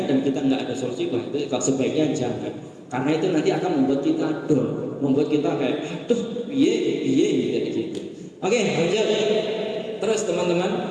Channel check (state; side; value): identical; both; correlation 1.00